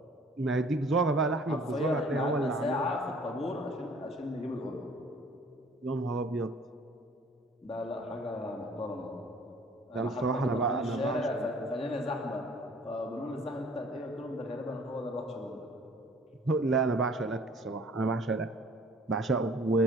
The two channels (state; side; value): normal; both; correlation 0.53